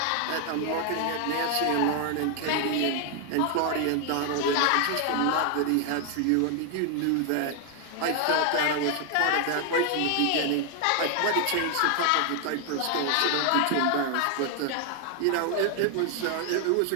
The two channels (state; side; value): different; both; correlation 0.00